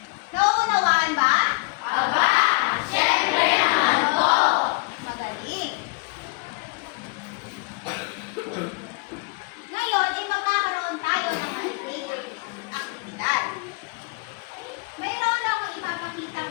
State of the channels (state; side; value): quieter; right; 30.3 dB